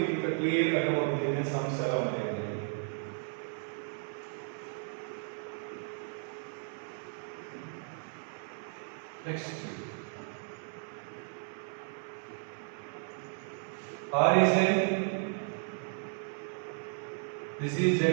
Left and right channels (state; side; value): silent; left; 55 dB below the other